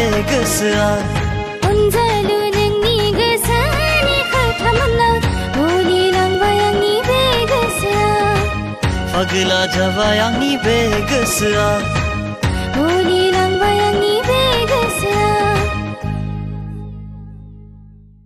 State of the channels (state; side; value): identical; both; correlation 1.00